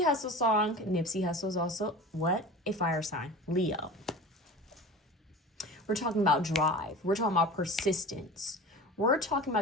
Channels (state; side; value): normal; both; correlation 0.35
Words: Hussle song. Nipsey Hussle is also, what? A fire sign. Leo. We're talking about drive. We're talking about persistence. We're talking